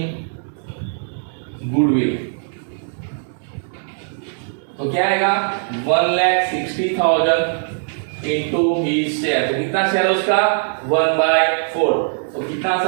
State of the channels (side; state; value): left; silent; 66 dB below the other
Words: गुडविल, तो क्या आएगा, 1,60,000 इंटू हिज शेयर, तो कितना शेयर उसका, 1/4, तो कितना